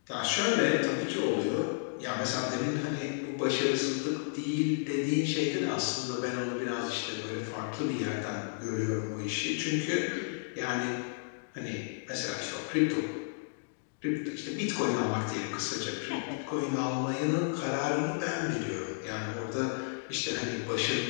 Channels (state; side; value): silent; right; digital silence